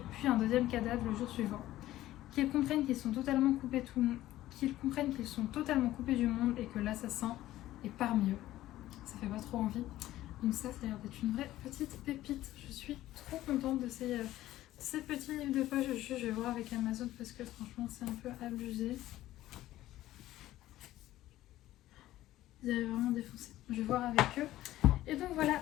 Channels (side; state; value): right; quieter; 14.9 dB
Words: puis un deuxième cadavre le jour suivant. Qu'ils comprennent qu'ils sont totalement coupés du monde et que l'assassin est parmi eux. Ça fait pas trop envie. Donc ça a l'air d'être une vraie petite pépite. Je suis trop contente de ces petits livres de poche. Je vais voir avec Amazon parce que franchement c'est un peu abusé. Ils avaient vraiment défoncé. Je vais voir avec eux. Et donc voilà